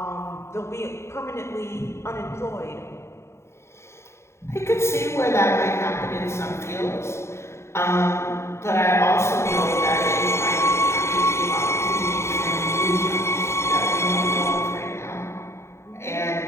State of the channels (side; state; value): right; late; 0.13 ms